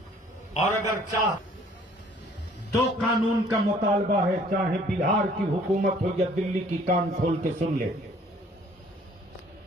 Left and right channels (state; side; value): normal; both; correlation 0.57